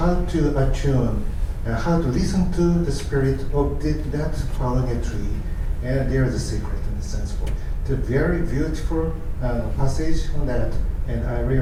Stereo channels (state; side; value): identical; both; correlation 1.00